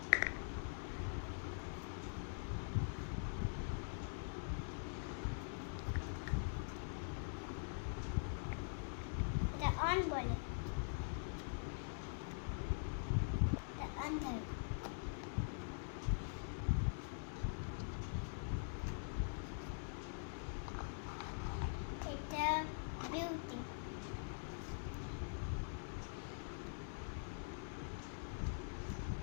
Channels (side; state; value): right; silent; digital silence